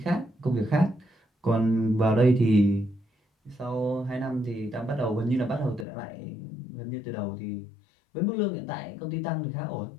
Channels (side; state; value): right; drops out; at 5.9 s